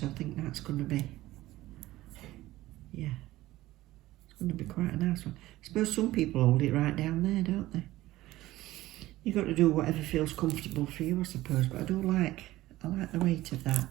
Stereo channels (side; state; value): left; quieter; 16.6 dB